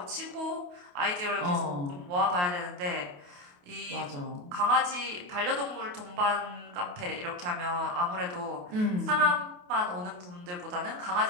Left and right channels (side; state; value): left; late; 28 ms